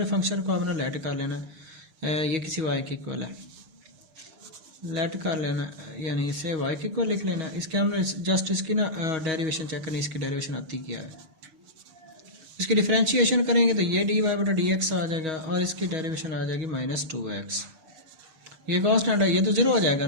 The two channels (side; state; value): left; late; 6.3 ms